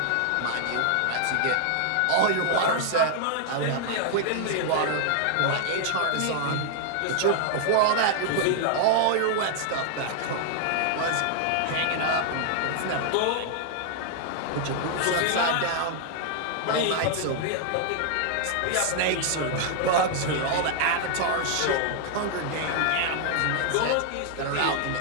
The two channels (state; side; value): different; both; correlation 0.00